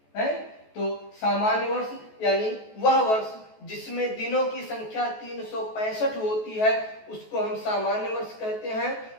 है? तो सामान्य वर्ष यानी वह वर्ष जिसमें दिनों की संख्या 365 होती है उसको हम सामान्य वर्ष कहते हैं।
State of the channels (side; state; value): right; late; 14 ms